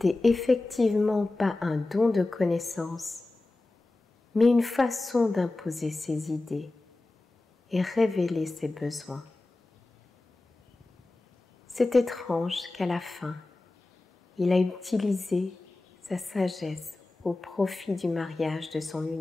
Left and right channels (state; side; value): quieter; right; 3.0 dB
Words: effectivement pas un don de connaissance, mais une façon d'imposer ses idées, et révéler ses besoins. C'est étrange qu'à la fin, il a utilisé sa sagesse au profit du mariage de son